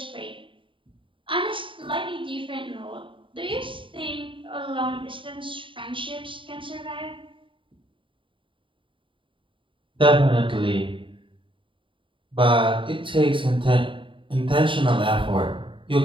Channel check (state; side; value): late; left; 0.25 ms